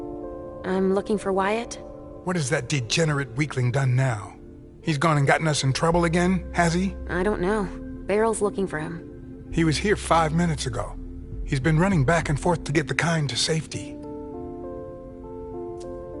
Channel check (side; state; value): both; identical; correlation 1.00